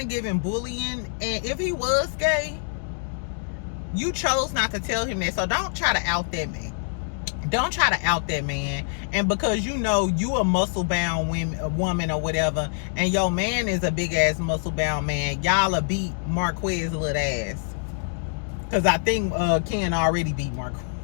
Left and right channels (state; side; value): silent; right; digital silence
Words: giving bullying. And if he was gay, you chose not to tell him that. So don't try to out that man. Don't try to out that man. And because you know you a muscle-bound woman or whatever, and your man is a big-ass muscle-bound man, y'all will beat Marquez little ass. Because I think Ken already beat